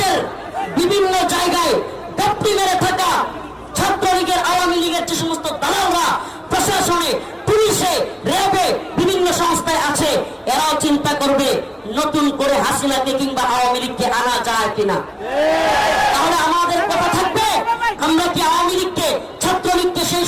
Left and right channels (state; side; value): identical; both; correlation 1.00